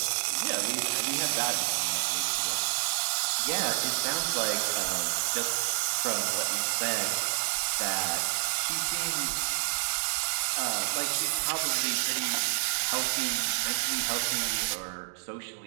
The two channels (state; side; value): silent; left; digital silence